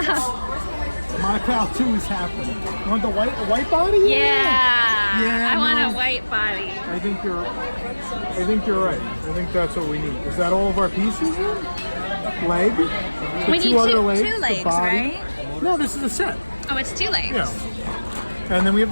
My Pal 2 is happening. You want the white body? Yeah. Yeah, I want no. a white body. I think you're right. I think that's what we need. Is that all of our pieces then? Leg? The We need other two legs, the legs, body? right? No, this is a set. Oh, it's 2 legs. Yeah. And then we have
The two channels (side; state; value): both; inverted; correlation -1.00